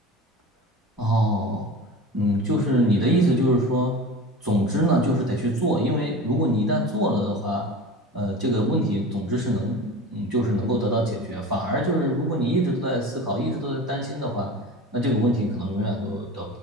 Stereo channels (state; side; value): normal; both; correlation 0.33